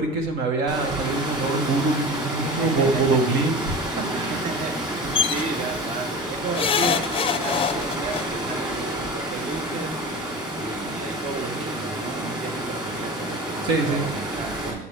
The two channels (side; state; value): both; normal; correlation 0.32